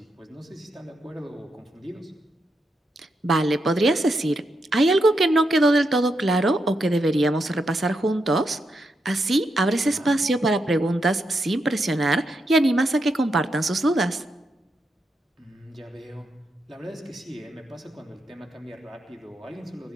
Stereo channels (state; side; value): normal; both; correlation 0.83